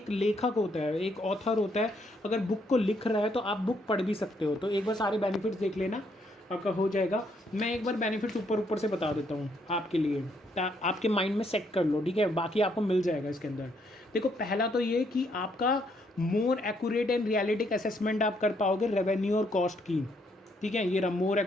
लेखक होता है, एक ऑथर होता है, अगर बुक को लिख रहा है तो आप बुक पढ़ भी सकते हो। तो एक बार सारे बेनिफिट्स देख लेना, आपका हो जाएगा। मैं एक बार बेनिफिट्स ऊपर ऊपर से बता देता हूँ आपके लिए, आपके माइंड में सेट कर लो, ठीक है। बाकी आपको मिल जाएगा इसके अंदर। देखो, पहला तो ये कि आपका मोर एक्यूरेट एंड रियलिटिक असेसमेंट आप कर पाओगे रेवेन्यू और कॉस्ट की, ठीक है। ये मोर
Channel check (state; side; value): normal; both; correlation 0.72